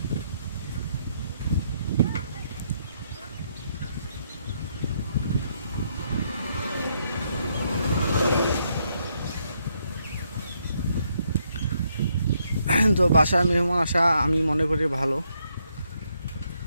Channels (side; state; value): both; inverted; correlation -0.75